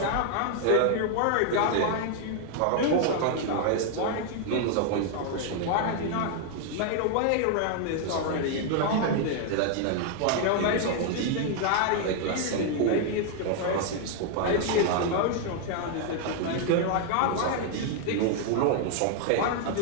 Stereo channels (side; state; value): both; different; correlation 0.00